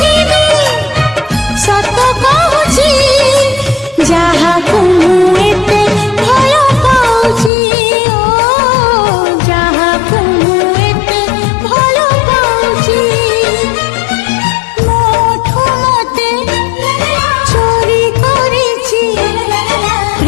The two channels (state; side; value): drops out; right; at 7.5 s